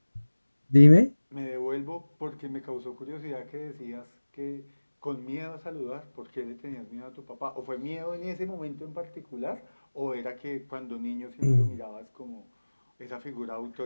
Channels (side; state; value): both; inverted; correlation -1.00